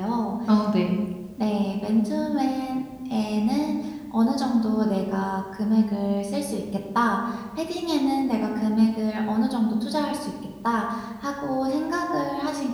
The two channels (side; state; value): both; identical; correlation 1.00